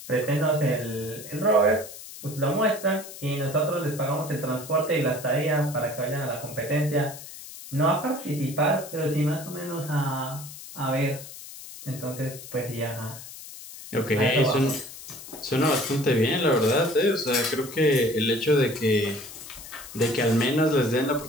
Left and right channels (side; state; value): left; noise; hiss, 14 dB below the sound